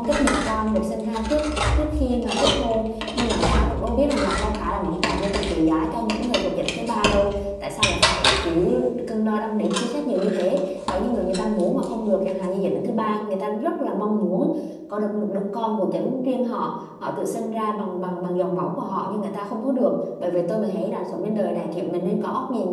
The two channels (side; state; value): both; identical; correlation 1.00